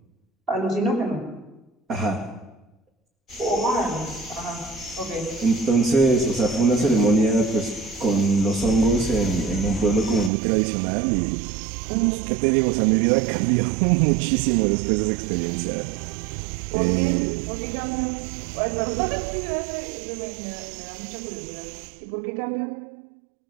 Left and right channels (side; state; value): left; drops out; at 10.3 s